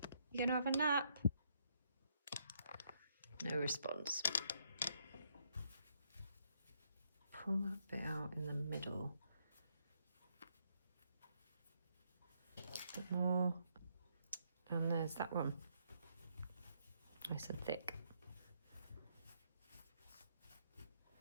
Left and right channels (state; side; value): inverted; both; correlation -0.74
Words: You gonna have a nap? No response. Pull that bit out in the middle. A bit more. And there's that one. Nice and thick.